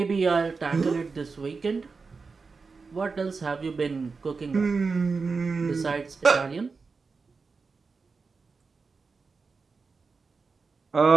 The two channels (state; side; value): quieter; left; 4.6 dB